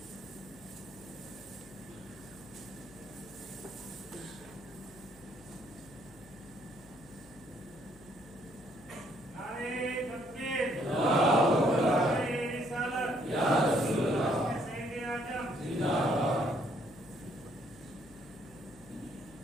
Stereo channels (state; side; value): noise; left; hum, 23 dB below the sound